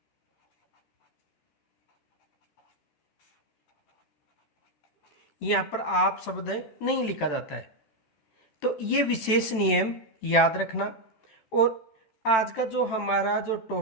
यहां पर आप शब्द नहीं लिखा जाता है। तो ये विशेष नियम याद रखना। और आज का जो हमारा जो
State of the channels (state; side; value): late; right; 14 ms